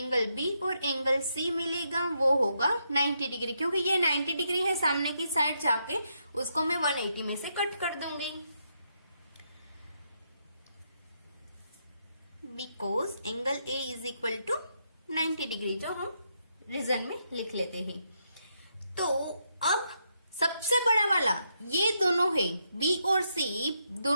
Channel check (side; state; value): both; inverted; correlation -0.79